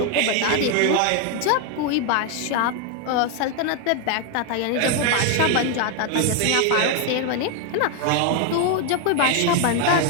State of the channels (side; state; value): both; different; correlation 0.01